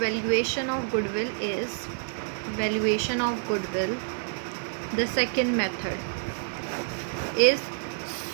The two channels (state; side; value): silent; left; digital silence